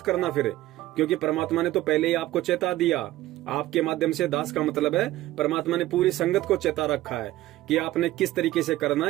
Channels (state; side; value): quieter; left; 16.0 dB